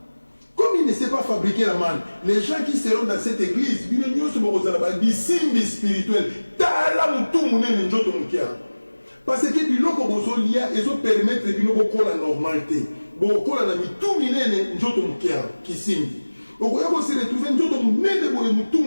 Comme il ne sait pas fabriquer la manne, les gens qui seront dans cette église, ils ne sont pas des signes spirituels. Parce que biloko bozolia ezo permettre bino bokola normalité. Bokola na mitu minene njoto mukia kisimbi. Okoya ko se retrouver njoto munene boye mutu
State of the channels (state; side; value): inverted; both; correlation -1.00